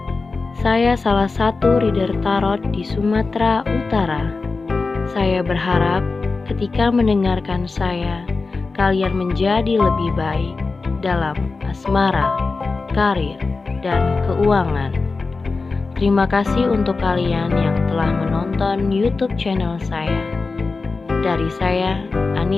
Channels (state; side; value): quieter; right; 4.0 dB